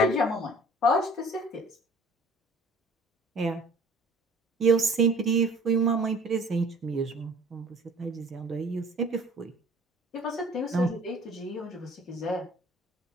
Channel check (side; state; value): both; normal; correlation 0.51